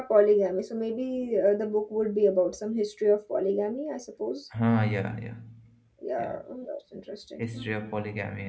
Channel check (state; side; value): identical; both; correlation 1.00